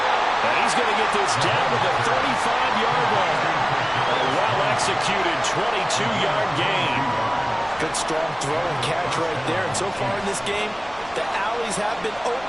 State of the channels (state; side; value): noise; left; rumble, 23 dB below the sound